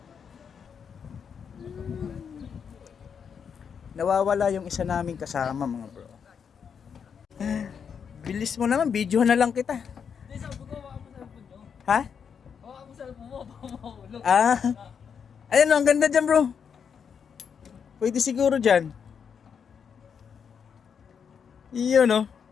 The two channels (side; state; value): right; quieter; 7.0 dB